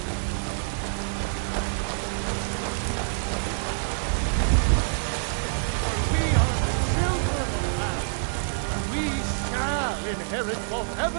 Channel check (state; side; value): silent; left; 59 dB below the other